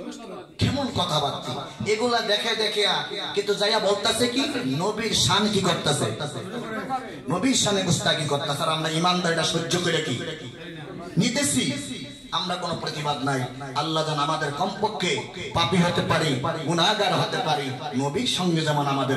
কেমন কথাবার্তা এগুলা দেখে দেখে, কিন্তু যাইয়া বলতেছে কি নবীর শান কি করতেছে, নবীর শানে গুস্তাখি করতেছে। আর আমরা ইমানদারিটা সহ্য করে কি নিতেছি, আমরা কোনো প্রতিবাদ নাই। আল্লাহ যেন আমাদের কমপক্ষে পাপী হতে পারি, গুনাহগার হতে পারি, নবীর সঙ্গে যেমন আমাদের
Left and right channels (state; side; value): identical; both; correlation 1.00